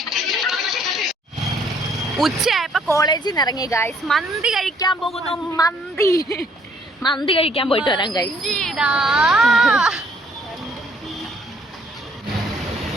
ഉച്ചയായപ്പോ കോളേജിൽ നിന്ന് ഇറങ്ങി ഗായ്സ്. മന്തി കഴിക്കാൻ പോകുന്നു. മന്തി കഴിക്കാൻ പോയിട്ട് വരാം ഗായ്സ്.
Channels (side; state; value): both; normal; correlation 0.63